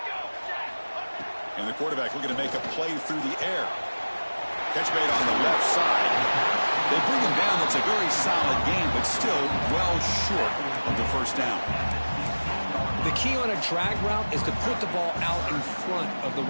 And the quarterback looking to make a play through the air. Catch made on the left side. They bring him down. That's a very solid game, but still well short of the first down. The key on a drag route is to put the ball out in front of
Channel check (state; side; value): inverted; both; correlation -1.00